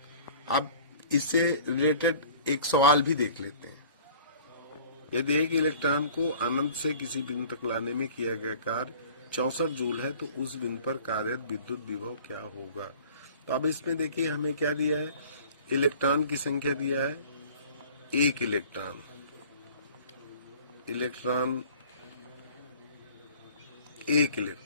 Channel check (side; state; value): both; inverted; correlation -0.47